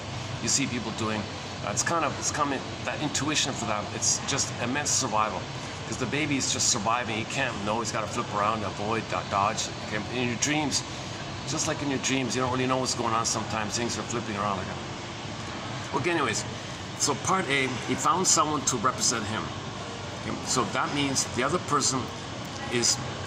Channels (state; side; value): identical; both; correlation 1.00